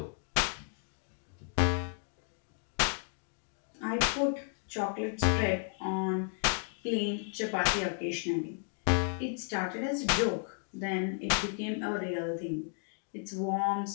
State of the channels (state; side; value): silent; right; 55 dB below the other